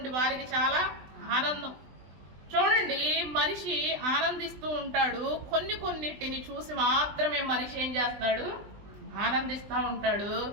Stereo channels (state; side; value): late; left; 20 ms